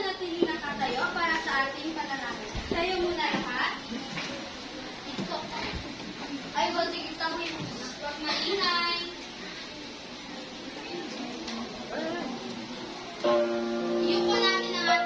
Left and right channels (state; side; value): identical; both; correlation 1.00